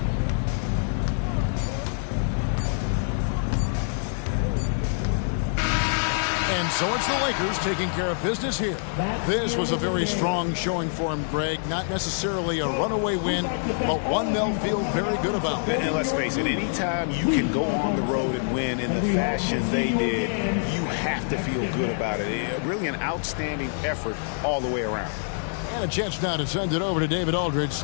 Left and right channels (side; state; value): right; silent; digital silence